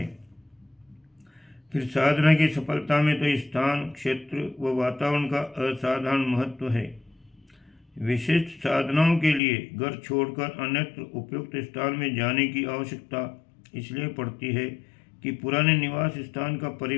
फिर साधना की सफलता में तो स्थान, क्षेत्र व वातावरण का असाधारण महत्व है। विशिष्ट साधनाओं के लिए घर छोड़कर अन्यत्र उपयुक्त स्थान में जाने की आवश्यकता इसलिए पड़ती है कि पुराने निवास स्थान का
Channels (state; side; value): drops out; right; at 9.4 s